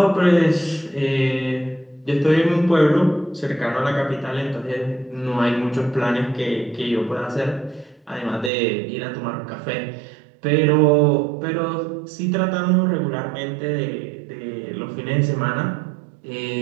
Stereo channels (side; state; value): left; drops out; at 8.5 s